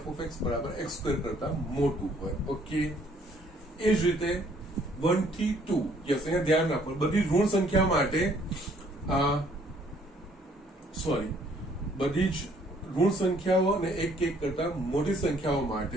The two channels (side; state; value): both; normal; correlation 0.62